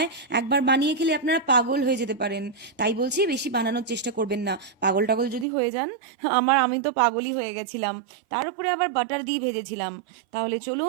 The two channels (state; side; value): drops out; left; at 5.5 s